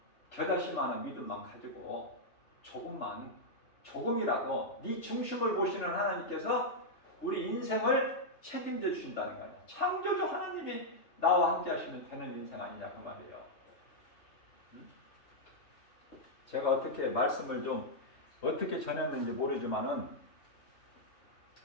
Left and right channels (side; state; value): right; late; 3.3 ms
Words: 겨자씨만한 믿음만 가지고 조금이라도 네 중심을 보시는 하나님께서 우리 인생을 책임져 주신다는 거예요. 창조주 하나님이 나와 함께 하시면 되는 인생 아니냐 그 말이에요. 제가 어떻게 말씀을 좀 어떻게 전했는지 모르지만은,